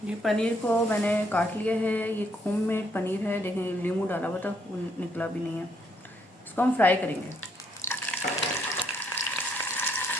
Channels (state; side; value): normal; both; correlation 0.71